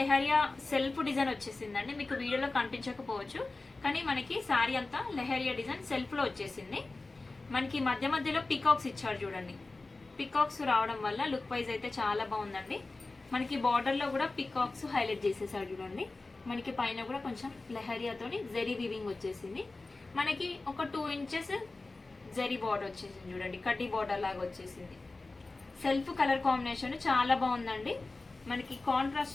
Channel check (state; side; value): quieter; right; 3.3 dB